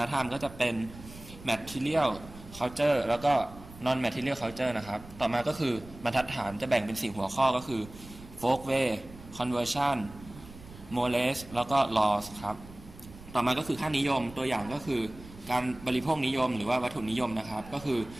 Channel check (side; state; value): right; noise; rumble, 18 dB below the sound